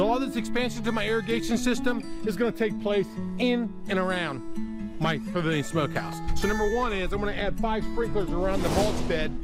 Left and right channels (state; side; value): identical; both; correlation 1.00